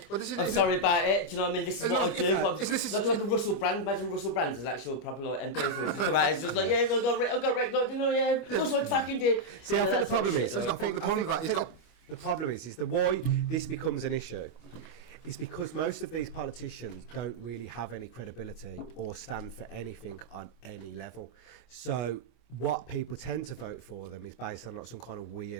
Well, this is- I'm isn't- sorry about it. Do you know what I mean? This is It's what not- I if- do. no, But this is- that's like a Russell Brand. Imagine Russell Brand as actual proper like MP for it to come out and just like, yeah, I got wrecked. Like, you know, yeah, that's what I fucking did. See, I think the problem is. He's got the problem with that. He's got. The problem is the why this becomes an issue is because most of these politicians don't really have any credibility or stand for anything on any level. So what people tend to vote for them is based on like some kind of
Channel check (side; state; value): right; late; 25 ms